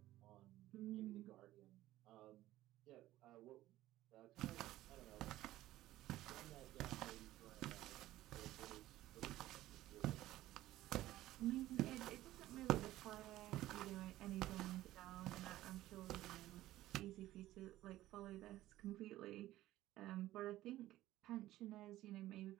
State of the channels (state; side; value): quieter; left; 15.3 dB